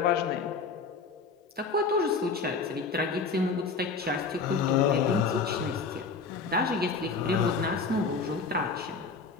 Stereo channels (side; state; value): right; quieter; 4.6 dB